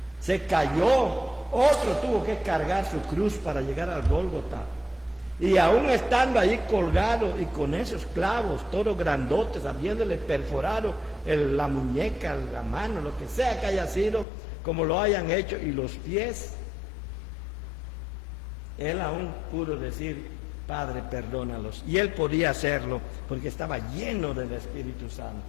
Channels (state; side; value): drops out; right; at 14.2 s